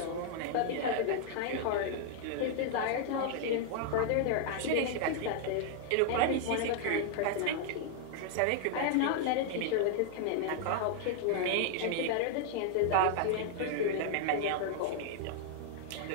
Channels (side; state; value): both; different; correlation -0.01